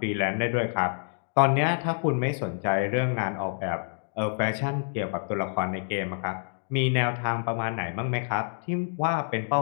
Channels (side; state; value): right; silent; digital silence